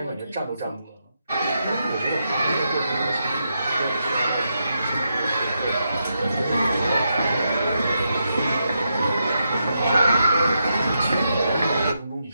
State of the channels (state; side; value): inverted; both; correlation -0.84